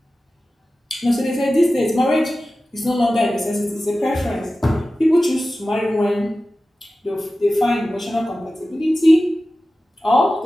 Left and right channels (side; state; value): both; normal; correlation 0.95